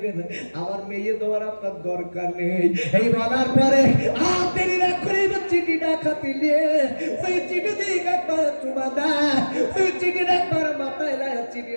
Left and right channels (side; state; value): both; inverted; correlation -1.00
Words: আমার মেয়ে দেওয়ার আপনার দরকার নেই। এই বলার পরে আর দেরি না করে চিঠিটা খাতে নিয়ে ওই চিঠি দিয়ে একবার চুমা দেয়, ওই চিঠির একবার মাথায় দেয়,